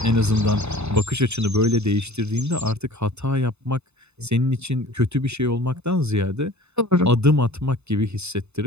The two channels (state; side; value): late; left; 0.81 ms